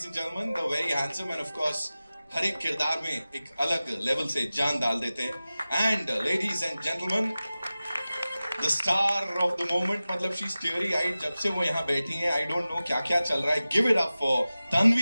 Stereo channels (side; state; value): both; inverted; correlation -0.96